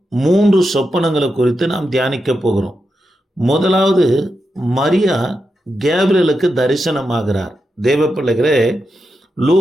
3 சொப்பனங்களை குறித்து நாம் தியானிக்க போகிறோம். முதலாவது, மரியா கேப்ரியலுக்கு தரிசனமாகிறார். தேவ பிள்ளைகளே,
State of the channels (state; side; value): normal; both; correlation 0.87